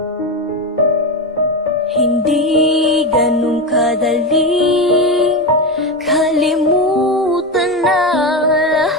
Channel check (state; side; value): normal; both; correlation 0.15